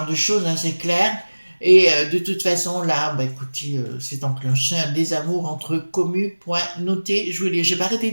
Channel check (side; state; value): both; inverted; correlation -1.00